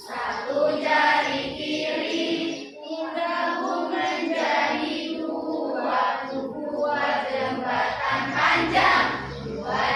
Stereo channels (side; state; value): both; identical; correlation 1.00